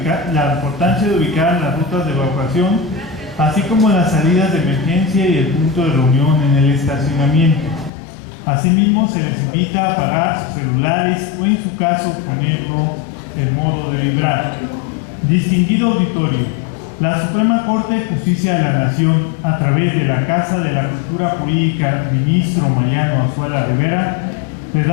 la importancia de ubicar las rutas de evacuación, así como las salidas de emergencia y el punto de reunión en el estacionamiento. Asimismo, se les invita a apagar sus celulares o, en su caso, ponerlo en modo de vibrar. Distinguido auditorio, la Suprema Corte de Justicia de la Nación, a través de la Casa de la Cultura Jurídica, ministro Mariano Azuela Rivera, le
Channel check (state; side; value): drops out; right; at 7.9 s